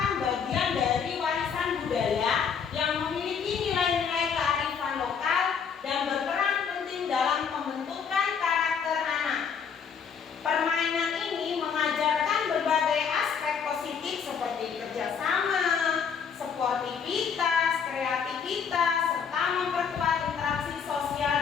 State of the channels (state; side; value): quieter; right; 6.7 dB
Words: bagian dari warisan budaya yang memiliki nilai-nilai kearifan lokal dan berperan penting dalam pembentukan karakter anak. Permainan ini mengajarkan berbagai aspek positif seperti kerjasama, sportivitas, kreativitas, serta memperkuat interaksi sosial